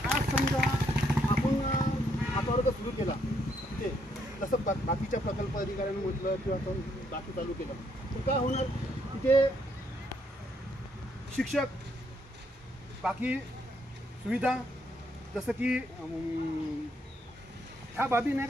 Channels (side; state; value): both; normal; correlation 0.73